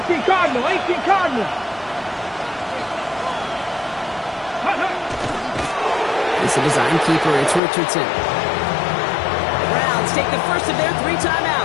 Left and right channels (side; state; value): right; drops out; at 7.6 s